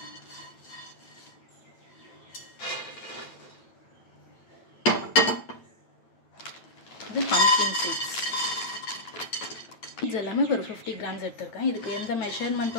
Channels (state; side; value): late; right; 9.0 ms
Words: இது பம்ப்கின் சீட்ஸ். சீட்ஸ் எல்லாமே ஒரு 50 கிராம்ஸ் எடுத்துருக்கேன். இதுக்கு எந்த